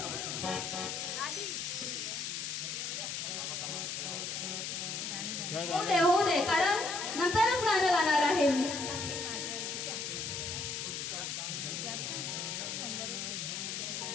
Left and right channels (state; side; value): noise; left; hiss, 3 dB below the sound